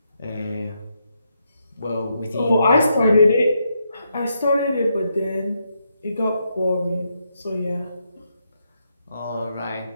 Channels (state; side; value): inverted; both; correlation -0.80